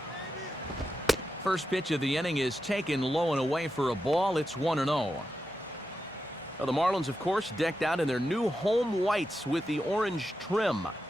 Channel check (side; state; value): both; normal; correlation 0.89